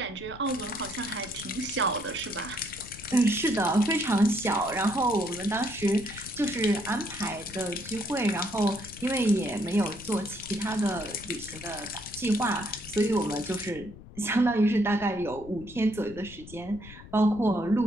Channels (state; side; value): noise; left; rumble, 17 dB below the sound